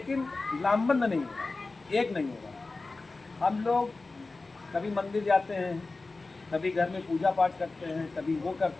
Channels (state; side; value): quieter; right; 3.6 dB